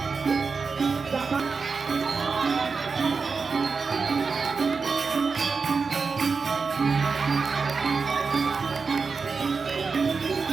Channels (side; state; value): left; quieter; 4.9 dB